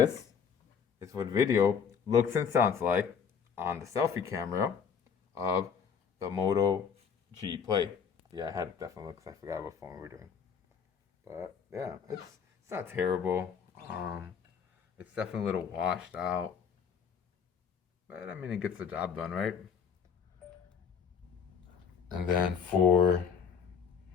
is what video looks and sounds like on the selfie camera of the Moto G Play. Yeah, I had to definitely look because I forgot what phone we were doing. But yeah, it's not terrible. It's definitely a little washed out. But I mean, it gets the job done, right? And then for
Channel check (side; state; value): right; quieter; 6.7 dB